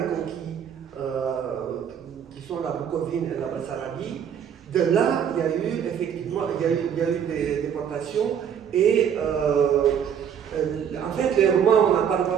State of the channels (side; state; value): left; quieter; 8.3 dB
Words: conquises, qui sont la Bucovine et la Bessarabie, De là, il y a eu effectivement des déportations et en fait, les Roumains, on n'en parle pas